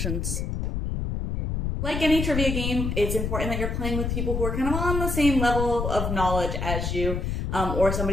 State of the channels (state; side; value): noise; left; rumble, 2 dB below the sound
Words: Like any trivia game, it's important that you're playing with people who are kind of on the same level of knowledge as you, or